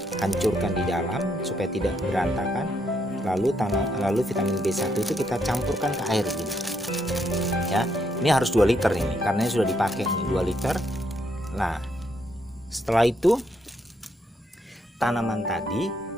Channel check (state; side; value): normal; both; correlation 0.75